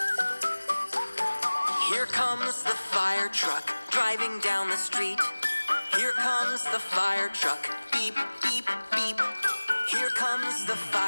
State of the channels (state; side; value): inverted; both; correlation -1.00